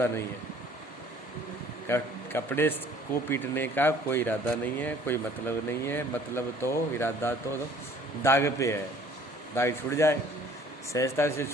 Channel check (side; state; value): both; normal; correlation 0.54